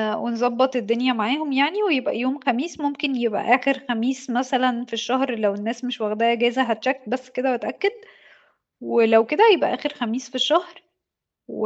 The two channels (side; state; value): both; identical; correlation 1.00